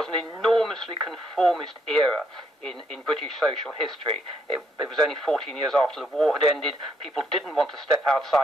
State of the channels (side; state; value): both; normal; correlation 0.72